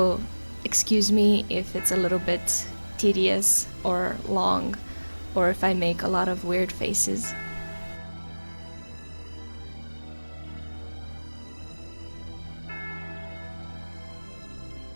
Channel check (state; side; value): inverted; both; correlation -1.00